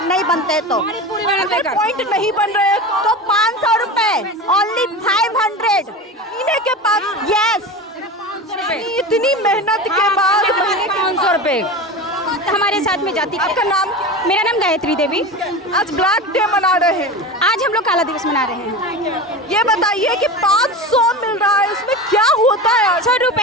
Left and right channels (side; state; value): both; normal; correlation 0.28